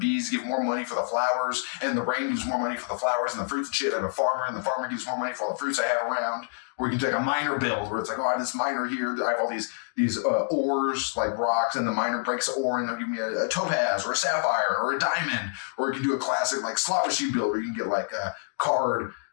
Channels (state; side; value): silent; right; digital silence